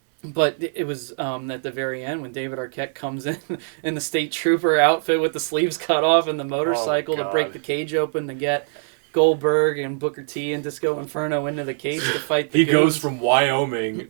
But it was at the very end when David Arquette comes in the state trooper outfit with the sleeves cut off and the motorcycle to break the cage open to get Goldberg and Booker T and Disco Inferno into the cage to fight the He goons. goes from Wyoming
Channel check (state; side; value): silent; left; digital silence